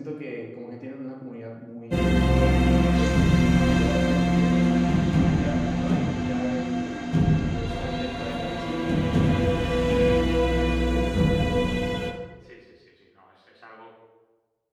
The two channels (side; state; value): both; identical; correlation 1.00